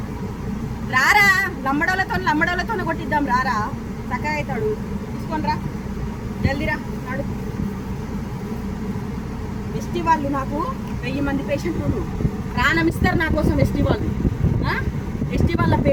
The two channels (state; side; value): identical; both; correlation 1.00